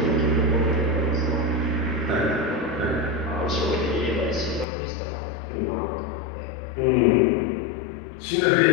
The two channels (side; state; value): right; drops out; at 4.7 s